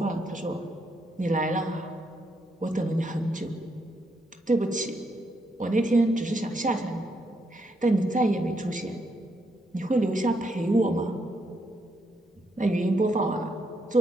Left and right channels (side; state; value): both; normal; correlation 0.78